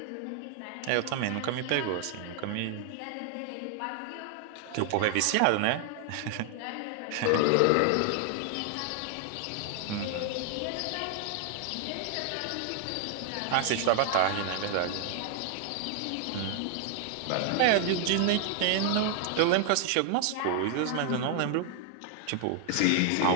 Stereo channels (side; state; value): both; different; correlation 0.00